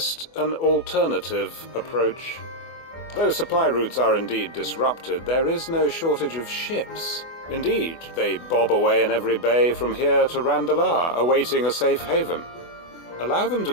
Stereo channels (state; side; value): late; right; 24 ms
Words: an alternative approach. Though supply routes are indeed disrupted, there is no shortage of ships. Indeed, they bob away in every bay from here to Randalar, awaiting a safe haven. Allow them to